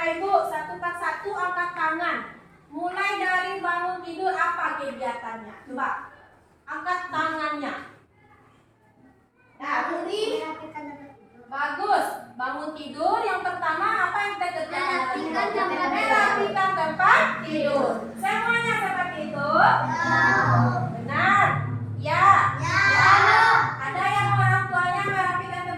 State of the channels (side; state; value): both; identical; correlation 1.00